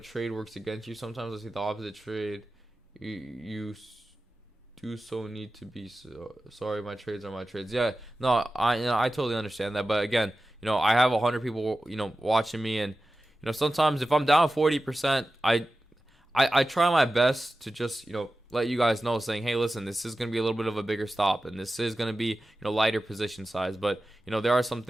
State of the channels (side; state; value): both; normal; correlation 0.94